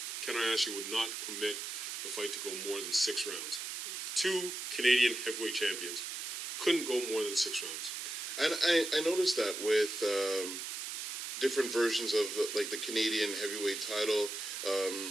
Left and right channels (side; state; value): right; noise; hiss, 5 dB below the sound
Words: Ken Ayashi would not permit the fight to go more than 6 rounds. 2 Canadian heavyweight champions couldn't go more than 6 rounds. And I noticed that with different versions of the Canadian heavyweight title.